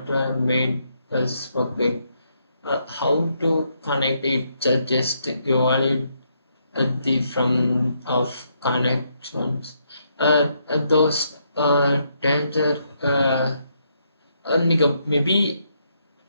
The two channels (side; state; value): both; inverted; correlation -0.76